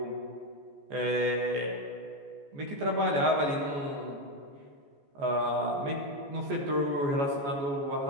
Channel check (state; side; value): late; left; 14 ms